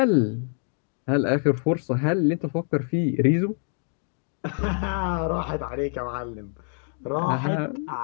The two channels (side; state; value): right; silent; 57 dB below the other